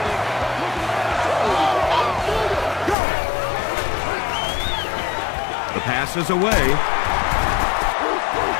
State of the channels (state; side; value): drops out; right; at 3.0 s